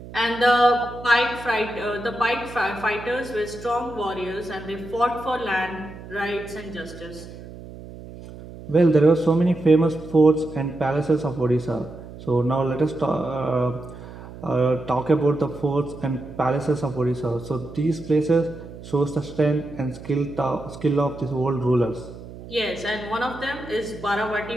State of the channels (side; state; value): right; noise; hum, 15 dB below the sound